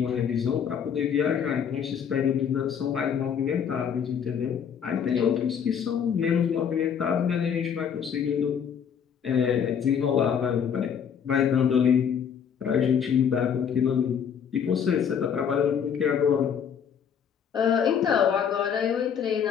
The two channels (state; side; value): quieter; right; 7.7 dB